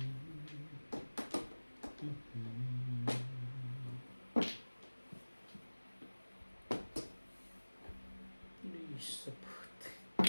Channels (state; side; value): inverted; both; correlation -1.00